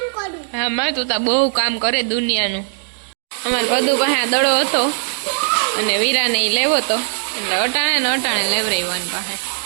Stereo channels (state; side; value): silent; left; digital silence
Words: હા માં તું તા બહુ કામ કરે દુનિયાનું. અમારે બધું પાસે આ દડો હતો અને વીરાને ઈ લેવો તો એટલે અટાણે લેવરાવ્યો પાસે.